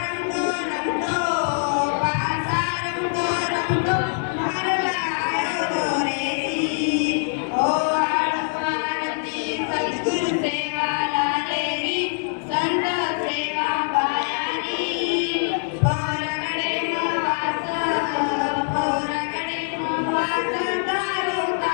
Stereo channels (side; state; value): right; silent; 63 dB below the other